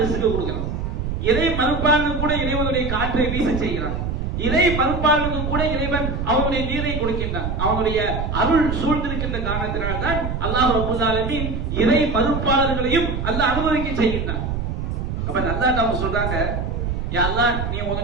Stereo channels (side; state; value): right; noise; rumble, 3 dB below the sound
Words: கொடுக்கிறான். இறை மறுப்பாளனுக்கு கூட இறைவனுடைய காற்றை வீச செய்கிறான். இறை மறுப்பாளனுக்கு கூட இறைவன் அவனுடைய நீரை கொடுக்கின்றான். அவனுடைய அருள் சூழ்ந்திருக்கின்ற காரணத்தினால் தான் அல்லாஹ் ரப்பல் ஆலமீன் இறை மறுப்பாளர்களையும் அல்லாஹ் அனுபவிக்க செய்கின்றான். அப்ப அல்லாஹ் நம்ம சொல்றாங்க, யா அல்லாஹ் நீ